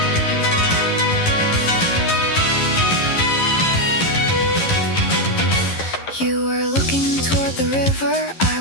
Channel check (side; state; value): right; late; 11 ms